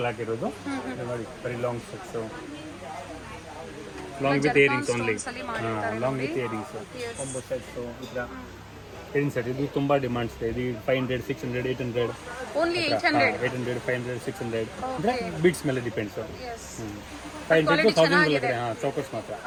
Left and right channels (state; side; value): identical; both; correlation 1.00